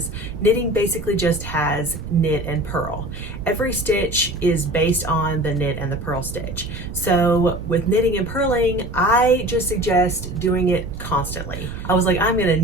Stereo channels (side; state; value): right; noise; rumble, 11 dB below the sound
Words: knitting basically just has knit and purl. Every stitch is based on the knit and the purl stitch. So with knitting and purling, I just suggest doing it constantly. I was like, I'm gonna